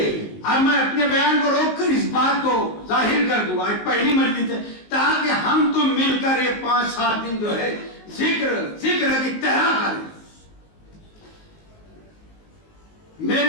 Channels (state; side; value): late; right; 19 ms